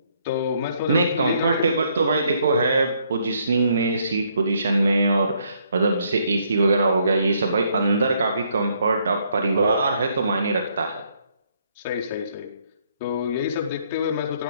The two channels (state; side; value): inverted; both; correlation -0.70